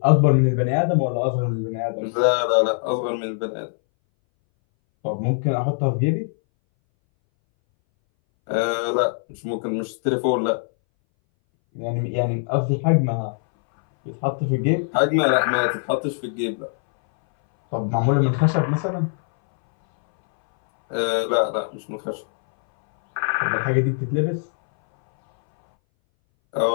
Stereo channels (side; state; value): right; silent; 62 dB below the other